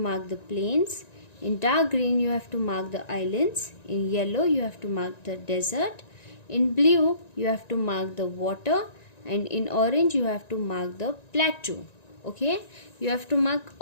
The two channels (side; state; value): right; late; 1.9 ms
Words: the plains, in dark green you have to mark the islands, in yellow you have to mark the desert, in blue you have to mark the water, and in orange you have to mark the plateau. Okay, you have to mark